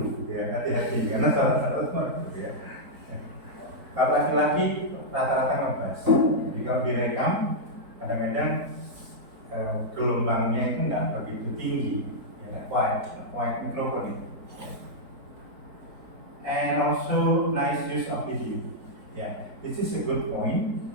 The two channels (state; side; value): late; left; 4.2 ms